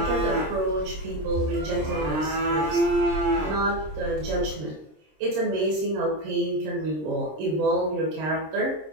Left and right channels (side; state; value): left; late; 26 ms